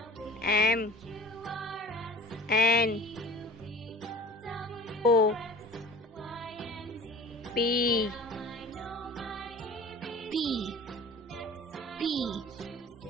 M N O P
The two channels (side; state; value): both; normal; correlation 0.42